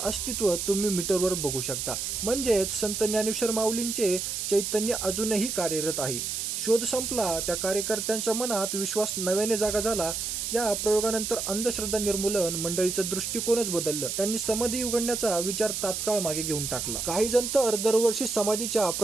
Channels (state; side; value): noise; right; hiss, 3 dB below the sound